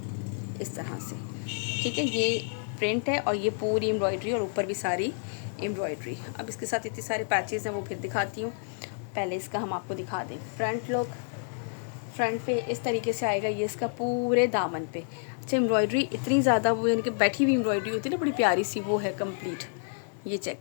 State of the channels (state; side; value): silent; right; 58 dB below the other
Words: इस तरह से, ठीक है। ये प्रिंट है और ये पूरी एम्ब्रॉयडरी और ऊपर भी सारी एम्ब्रॉयडरी। अब इसके साथ इतने सारे पैचेस हैं वो फिर दिखाती हूँ। पहले इसका हम आपको दिखा दें फ्रंट लुक। फ्रंट पे इस तरीके से आएगा ये इसका पूरे दामन पे। अच्छा, एम्ब्रॉयडरी इतनी ज़्यादा वो इनके बैठी हुई एम्ब्रॉयडरी होती है ना, बड़ी प्यारी सी, वो है कंप्लीट। ये चेक